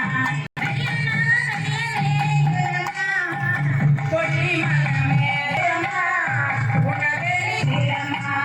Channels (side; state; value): both; identical; correlation 1.00